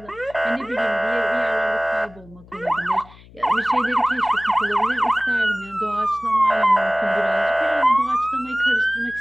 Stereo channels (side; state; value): left; noise; hum, 23 dB below the sound